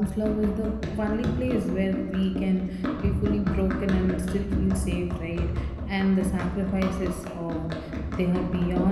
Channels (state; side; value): identical; both; correlation 1.00